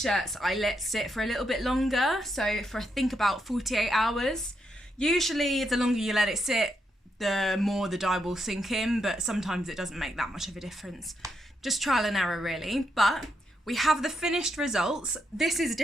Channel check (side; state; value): both; normal; correlation 0.81